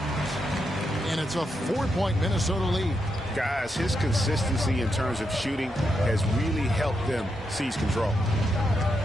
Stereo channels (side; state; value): both; normal; correlation 0.83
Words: And it's a 4-point Minnesota lead. Guys, his consistency in terms of shooting has really helped them seize control.